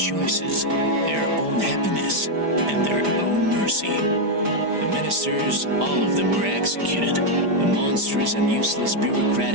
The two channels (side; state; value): left; late; 5.0 ms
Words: their own happiness, and their own mercy. The ministers, all of them were executed. The monstrous and useless